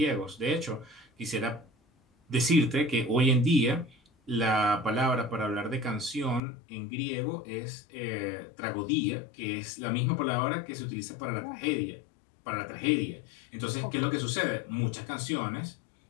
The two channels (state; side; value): drops out; right; at 6.4 s